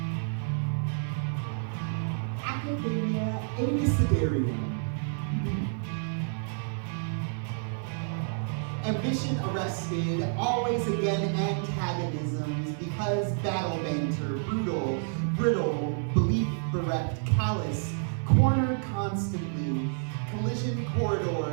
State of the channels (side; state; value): left; silent; digital silence